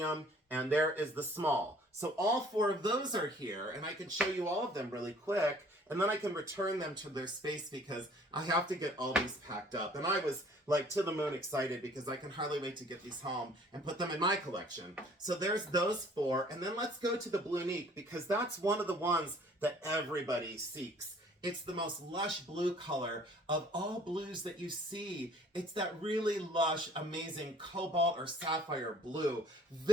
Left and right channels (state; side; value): normal; both; correlation 0.55